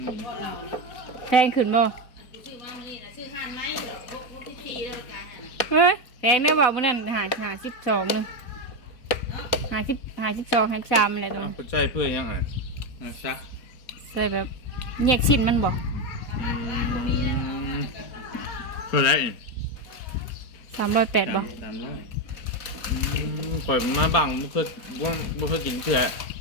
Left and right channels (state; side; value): late; right; 4.1 ms